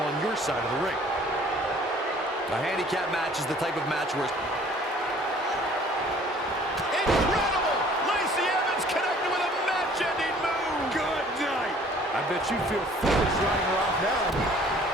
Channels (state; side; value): normal; both; correlation 0.54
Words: on your side of the ring. A handicap match is the type of match where... Incredible! Lacey Evans connected with a match-ending move! Good night! I bet you feel foolish writing her off now.